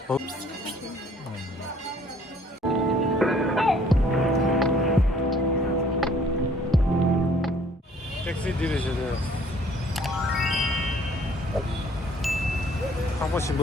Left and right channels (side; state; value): both; normal; correlation 0.59